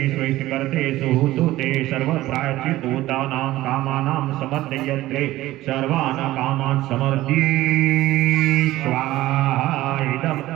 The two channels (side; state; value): left; quieter; 16.3 dB